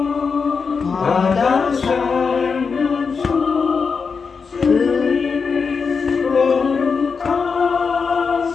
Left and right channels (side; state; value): right; quieter; 5.4 dB